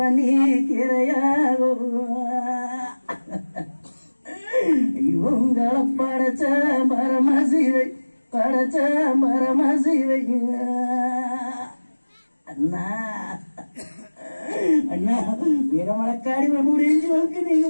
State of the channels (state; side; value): inverted; both; correlation -1.00